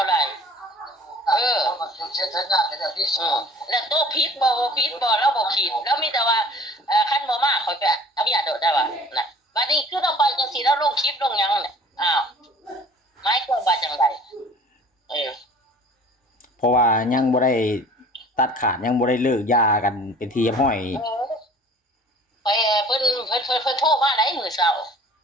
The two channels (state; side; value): normal; both; correlation 0.48